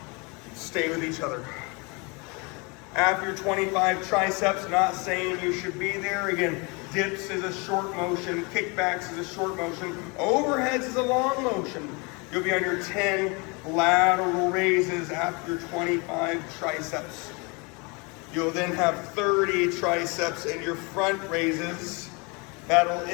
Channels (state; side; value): quieter; right; 29.7 dB